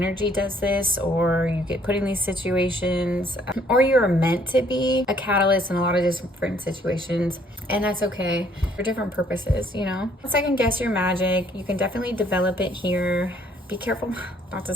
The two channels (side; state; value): both; normal; correlation 0.63